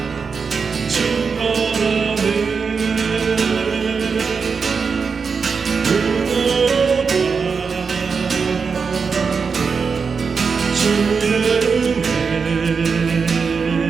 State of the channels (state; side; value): quieter; left; 5.4 dB